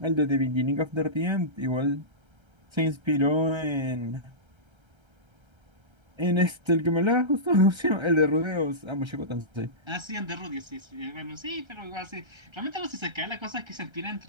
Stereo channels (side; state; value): left; late; 1.3 ms